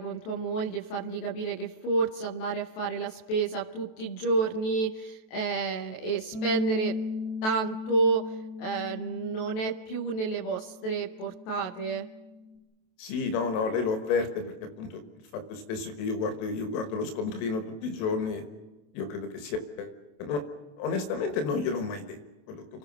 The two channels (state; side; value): late; right; 27 ms